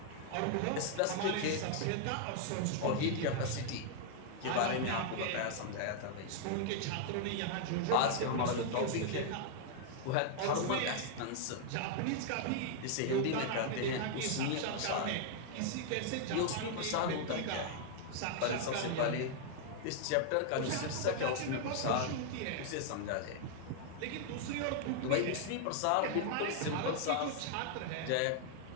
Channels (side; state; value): both; different; correlation 0.00